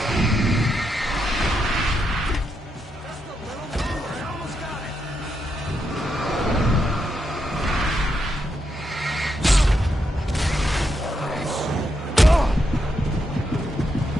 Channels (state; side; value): normal; both; correlation 0.81